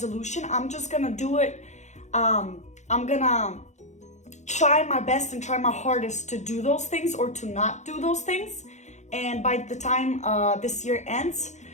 I'm just gonna do it. I'm gonna try my best and try my hardest to do those things or to not do those things. And by the time this year ends,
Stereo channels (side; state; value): right; late; 0.34 ms